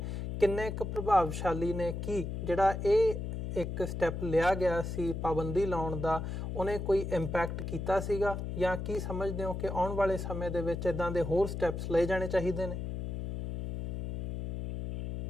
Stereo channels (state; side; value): noise; left; hum, 4 dB below the sound